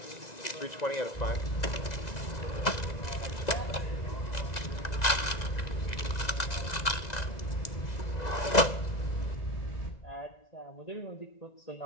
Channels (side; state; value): right; late; 1.9 ms